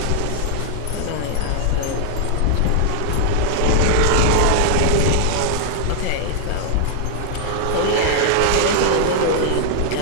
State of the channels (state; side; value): different; both; correlation -0.01